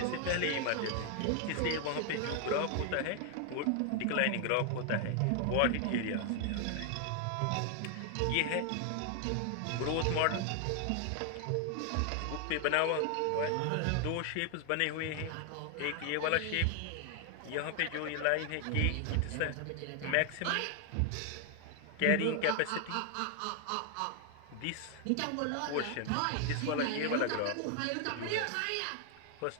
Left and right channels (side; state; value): both; different; correlation 0.00